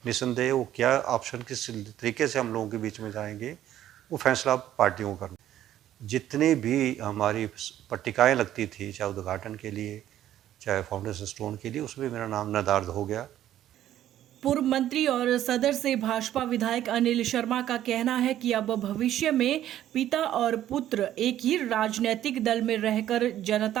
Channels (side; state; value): left; quieter; 12.1 dB